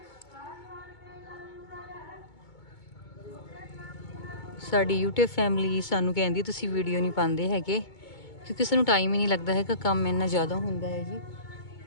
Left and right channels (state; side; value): late; right; 2.2 ms